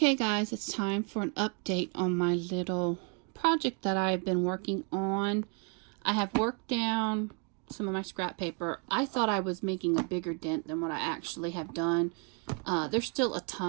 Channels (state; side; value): quieter; left; 36.7 dB